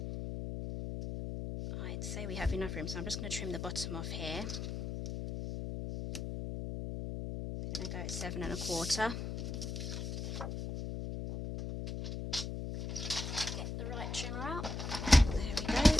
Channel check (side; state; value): left; noise; hum, 4 dB below the sound